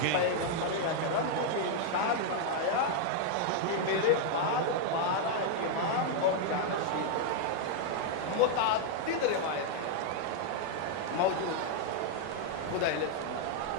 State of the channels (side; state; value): both; different; correlation 0.00